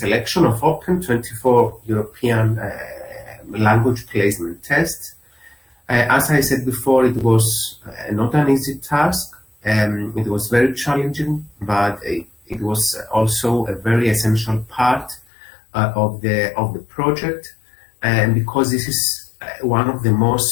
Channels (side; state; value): right; drops out; at 15.2 s